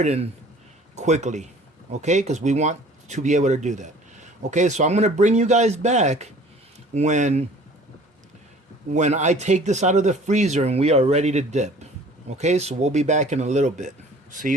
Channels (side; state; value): both; normal; correlation 0.50